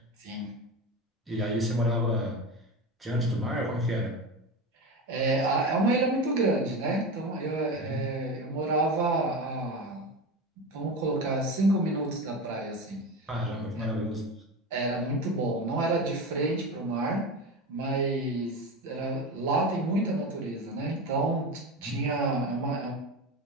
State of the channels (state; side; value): normal; both; correlation 0.23